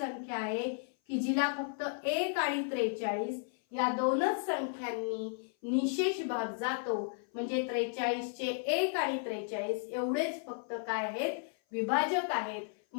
आहे की जिला फक्त 1 आणि 43 या दोनच संख्यांनी निशेष भाग जातो, म्हणजे 43 चे 1 आणि 43 एवढेच फक्त काय आहेत? विभाजक आहेत,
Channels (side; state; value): right; silent; 55 dB below the other